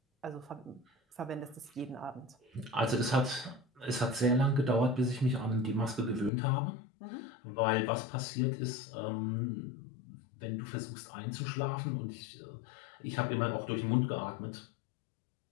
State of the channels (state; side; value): drops out; right; at 6.3 s